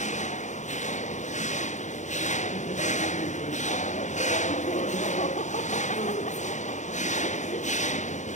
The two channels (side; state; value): right; late; 0.35 ms